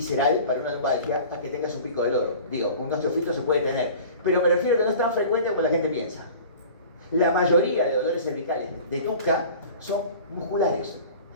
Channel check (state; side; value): inverted; both; correlation -0.42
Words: para una lumbalgia a que tengas un pico del oro. Digo, un osteofito se puede tener, pero me refiero a que no es tan frecuente como la gente piensa. La mayoría de dolores cervicales de nuca son musculares